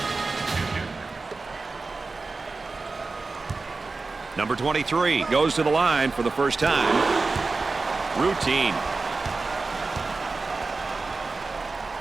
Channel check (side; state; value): left; quieter; 3.8 dB